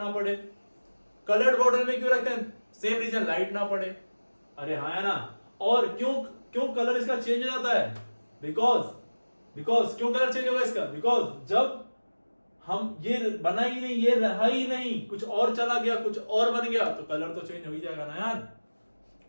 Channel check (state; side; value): inverted; both; correlation -1.00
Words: पड़े। कलर्ड बॉटल में क्यों रखते हैं, सेम रीजन, लाइट ना पड़े। अरे हाँ है ना। और क्यों कलर इसका चेंज हो जाता है, बिकॉज क्यों कलर चेंज होगा इसका, बिकॉज जब हम ये बना ही नहीं, ये रहा ही नहीं, कुछ और चला गया, कुछ और बन गया, तो कलर तो चेंज हो ही जाएगा ना यार।